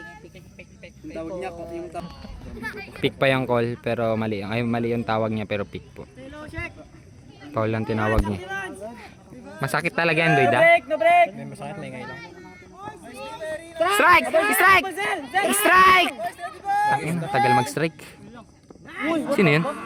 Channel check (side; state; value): both; identical; correlation 1.00